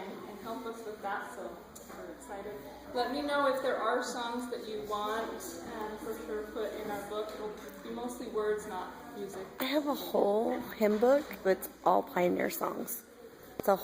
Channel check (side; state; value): both; identical; correlation 1.00